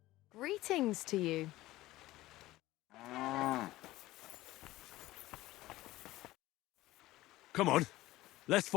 Greetings to you. Come on, let's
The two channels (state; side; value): quieter; right; 17.1 dB